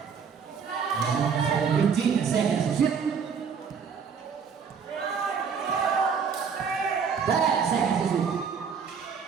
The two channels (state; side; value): quieter; left; 6.4 dB